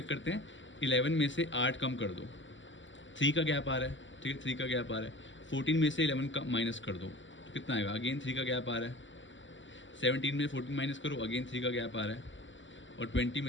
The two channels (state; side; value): late; right; 0.55 ms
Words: करते हैं, 11 में से 8 कम कर दो, 3 का गैप आ रहा है, ठीक है, 3 का गैप आ रहा है। 14 में से 11 का माइनस कर दो तो कितना आएगा, अगेन 3 का गैप आ रहा है। 17 में 14 माइनस करो, अगेन 3 का गैप आ रहा है। और 20